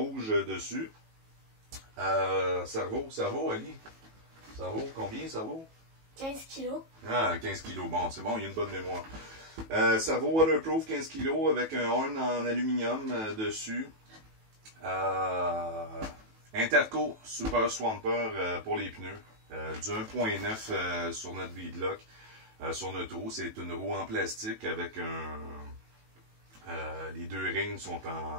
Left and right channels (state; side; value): late; left; 18 ms